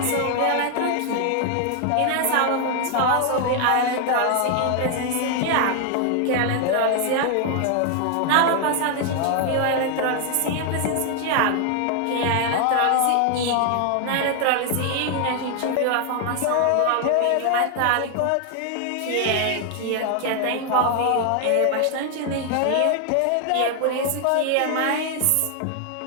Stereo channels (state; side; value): different; both; correlation 0.00